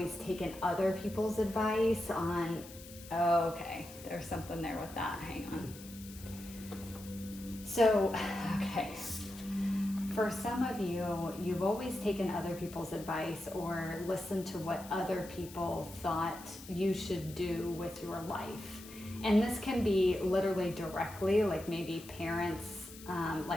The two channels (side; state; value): left; noise; hiss, 17 dB below the sound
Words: taken other people's advice on, oh, okay, there's something there with that, hang on. So, okay, for some of you, you've always taken other people's advice or listened to what other people thought you should do with your life. And this can be literally directly, like maybe parents,